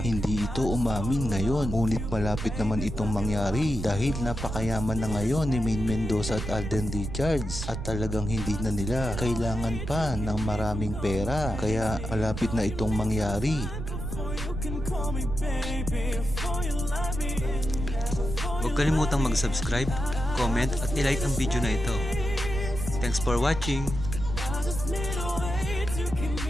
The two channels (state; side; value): noise; right; rumble, 5 dB below the sound